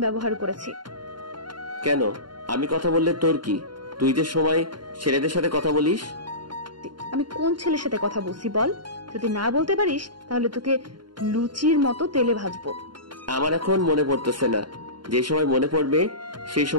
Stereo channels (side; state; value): left; late; 0.72 ms